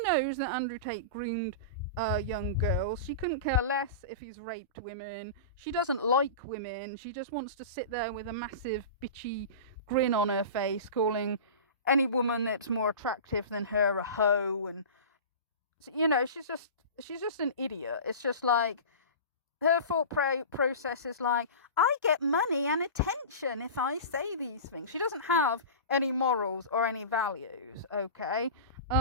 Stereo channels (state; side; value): inverted; both; correlation -0.31